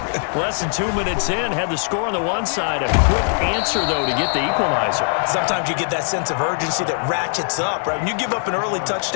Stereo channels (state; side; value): silent; right; 65 dB below the other